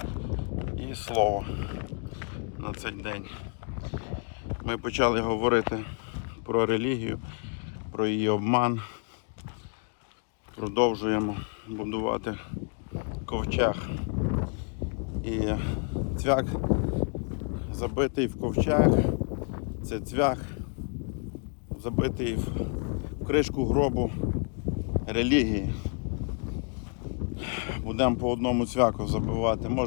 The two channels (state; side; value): quieter; right; 39.8 dB